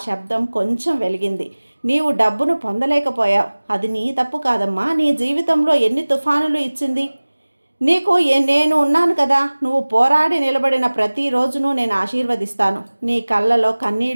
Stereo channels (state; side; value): inverted; both; correlation -1.00